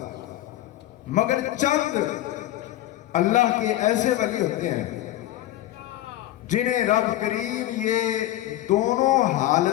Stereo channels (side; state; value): right; quieter; 14.5 dB